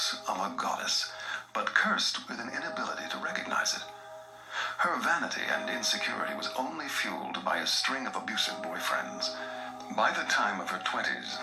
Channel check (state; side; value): identical; both; correlation 1.00